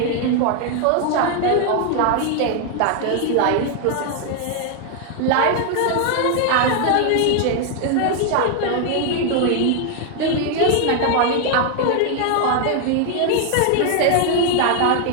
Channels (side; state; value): both; different; correlation 0.00